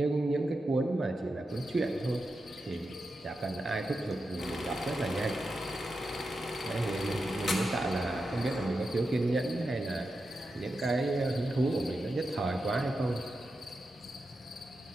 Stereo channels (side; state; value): both; normal; correlation 0.89